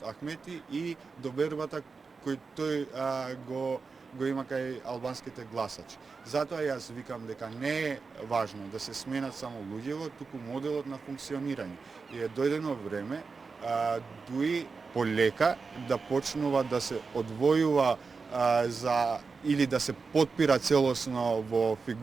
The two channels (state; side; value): quieter; left; 4.7 dB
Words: Ахмети и довербата кој тој го има кај албанските гласачи. Затоа јас викам дека не е важно да се сменат само луѓево, туку моделот на функционирање. И е дојдено време Дуи полека да почнува да се одвојува или да се потпира целосно во